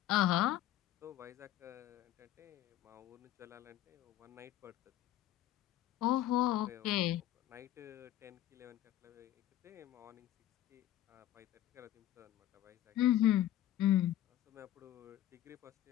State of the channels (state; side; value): quieter; right; 13.2 dB